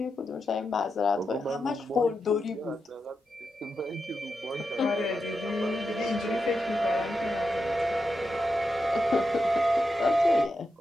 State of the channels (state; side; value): normal; both; correlation 0.87